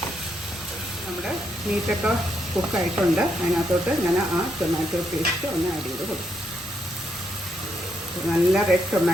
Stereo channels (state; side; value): normal; both; correlation 0.78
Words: നമ്മുടെ മീറ്റൊക്കെ കുക്കായിട്ടുണ്ട്. അതിനകത്തോട്ട് ഞാൻ ആ ടൊമാറ്റോ പേസ്റ്റ് ഒന്ന് ആഡ് ചെയ്ത് കൊടുക്കും. നല്ല റെഡ്